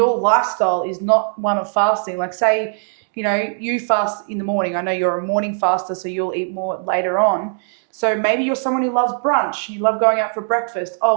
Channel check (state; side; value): silent; left; 66 dB below the other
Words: lifestyle is not one of fasting, like say, you know, you fast in the morning. I know you're a morning faster, so you'll eat more later on. So maybe you're someone who loves brunch. You love going out for breakfast.